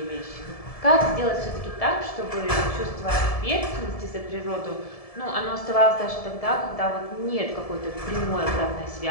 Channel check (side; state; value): right; late; 1.7 ms